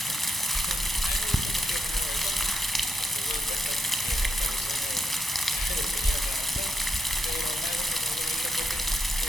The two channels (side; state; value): both; normal; correlation 0.82